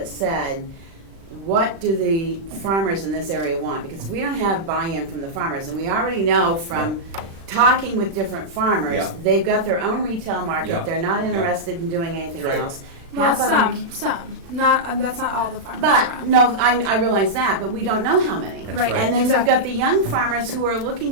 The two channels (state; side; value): late; left; 36 ms